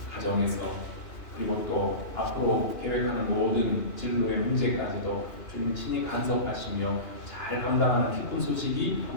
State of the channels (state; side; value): late; right; 2.9 ms